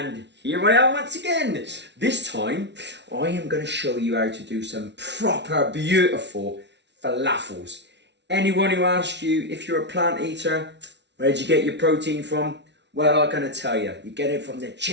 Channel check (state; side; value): late; left; 0.51 ms